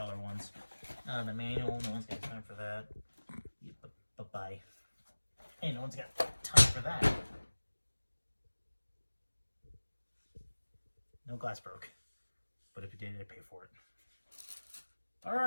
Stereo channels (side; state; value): both; inverted; correlation -1.00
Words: ones. Not the manual, no one's got time for that. Bye-bye. Hey, no one's got time for that. No glass broke. But if you did, I'd pay for it.